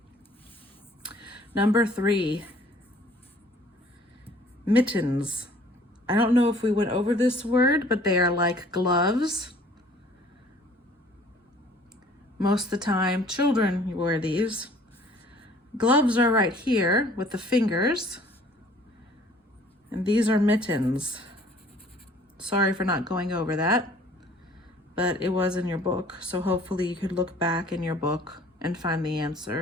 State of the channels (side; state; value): both; normal; correlation 0.54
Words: Number 3, mittens. I don't know if we went over this word, but they are like gloves. Most of the time, children wear these. Gloves are right here with the fingers, and these are mittens. Sorry for not going over that, but it was in your book, so hopefully you could look back in your book and find the